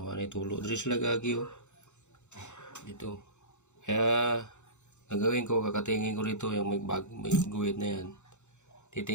man tulo. Diri sila gagi oh. Dito. Kaya gagawin ko, kakatingin ko rito yung may guhit na yan.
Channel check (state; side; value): late; right; 0.83 ms